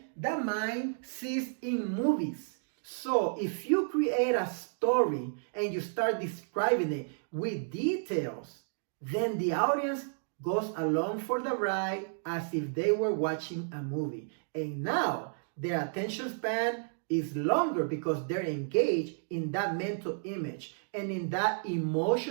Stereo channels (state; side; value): silent; left; digital silence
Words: the mind sees in movies. So if you create a story and you start describing it with details, then the audience goes along for the ride as if they were watching a movie. And now their attention span is longer because they're engaged in that mental image and in that